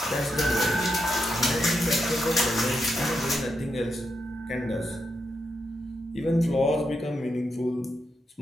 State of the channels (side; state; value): both; normal; correlation 0.84